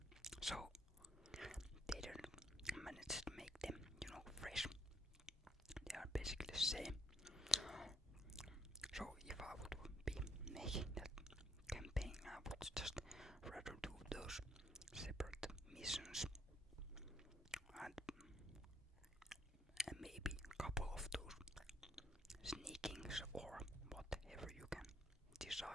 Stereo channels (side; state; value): both; normal; correlation 0.67